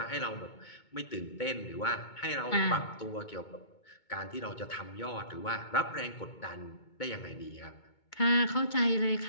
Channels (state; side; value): late; right; 2.2 ms